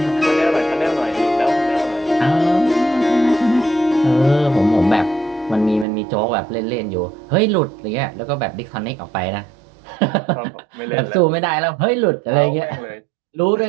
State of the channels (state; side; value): drops out; left; at 5.9 s